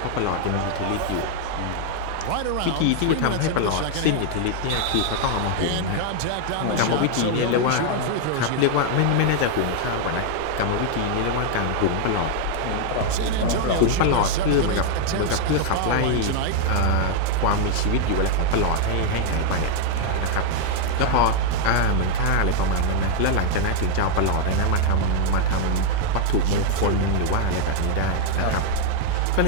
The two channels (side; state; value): both; different; correlation 0.00